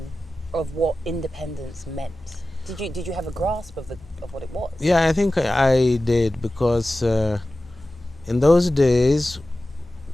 of what independence meant? Did you have a grasp of what it was? Yeah, I think I did, because in those days,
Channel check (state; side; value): normal; both; correlation 0.95